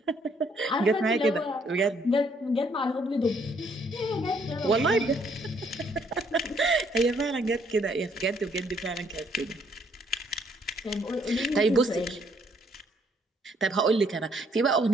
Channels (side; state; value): both; normal; correlation 0.68